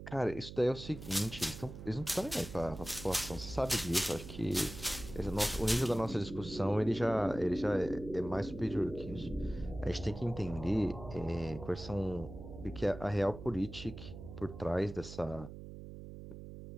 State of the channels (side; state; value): right; noise; hum, 12 dB below the sound